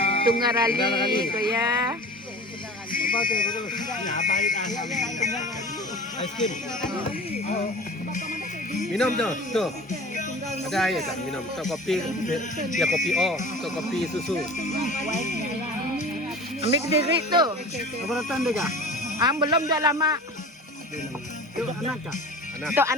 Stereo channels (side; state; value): both; normal; correlation 0.38